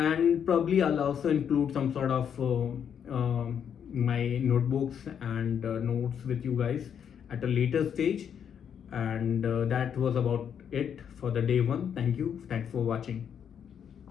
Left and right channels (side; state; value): right; quieter; 8.2 dB